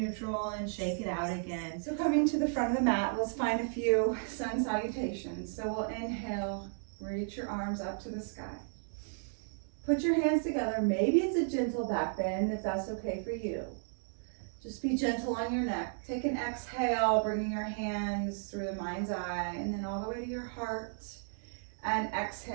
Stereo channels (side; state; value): left; silent; digital silence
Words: and shake it out again. So coming to the front of the mat, let's find a few sun salutations. So we'll inhale, reach your arms up to the sky. Put your hands together. Maybe it's a gentle back bend if that's okay for you. Just be gentle on your neck. Take an exhale, bringing your hands through the mind's eye and then all the way to your heart. And